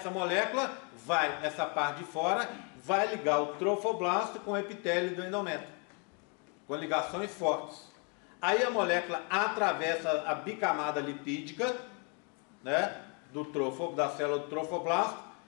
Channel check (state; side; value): quieter; right; 35.3 dB